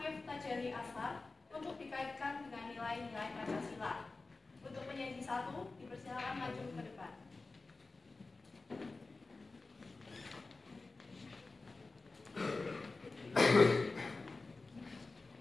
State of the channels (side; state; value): right; quieter; 3.6 dB